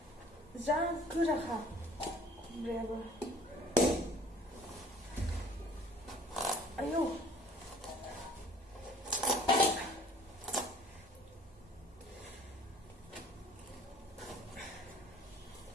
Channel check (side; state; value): both; normal; correlation 0.53